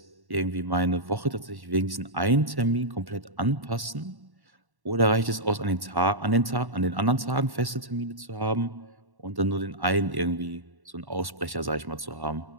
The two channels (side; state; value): left; late; 1.1 ms